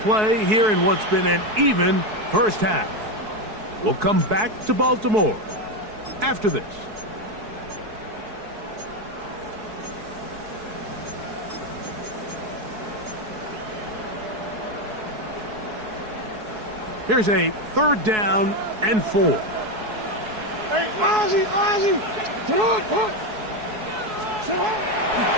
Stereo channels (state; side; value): late; left; 4.7 ms